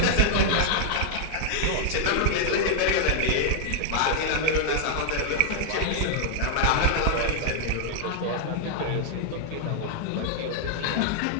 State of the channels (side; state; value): both; different; correlation 0.00